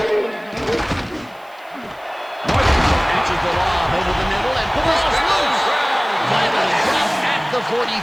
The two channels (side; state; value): right; noise; hiss, 30 dB below the sound